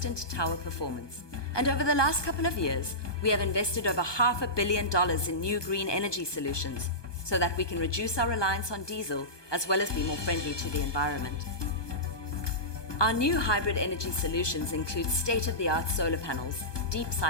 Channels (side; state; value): right; late; 1.2 ms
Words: tower performance. And over the last couple of years, we have invested over $500 million in new green energy solutions so that we can reduce our reliance on diesel as well as be more friendly to the environment. Our new hybrid energy solutions include state-of-the-art solar panels, deep